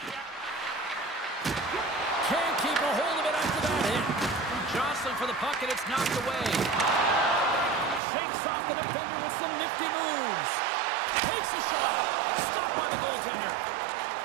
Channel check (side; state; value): left; drops out; at 8.0 s